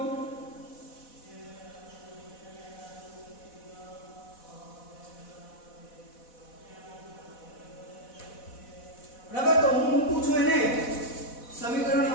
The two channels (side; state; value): right; late; 4.1 ms